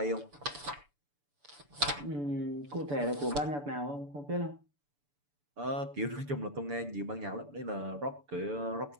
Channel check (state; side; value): late; left; 6.9 ms